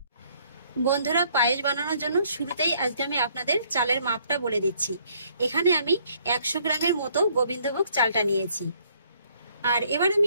বন্ধুরা, পায়েস বানানোর জন্য শুরুতেই আজকে আমি আপনাদের চালের মাপটা বলে দিচ্ছি। এখানে আমি 100 গ্রামের মতো গোবিন্দভোগ চালটা নিয়েছি। আর এবার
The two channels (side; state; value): both; inverted; correlation -0.65